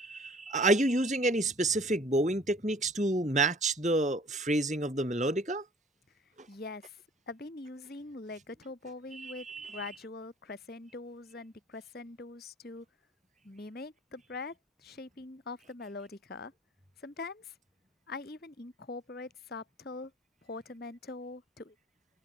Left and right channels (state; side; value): normal; both; correlation 0.52